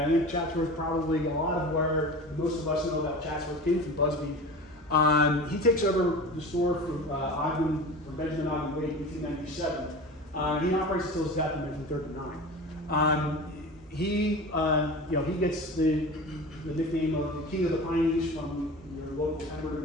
I think Chatsworth probably a lot of where most of us know about Chatsworth came from Busby. He takes over the store from Benjamin Ogden Wade in 1897. He operates until his death in 1939. He gets the nickname of the King of the Pineys from your local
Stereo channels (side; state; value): both; normal; correlation 0.34